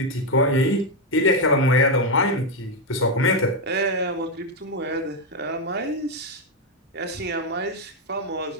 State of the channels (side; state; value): both; normal; correlation 0.05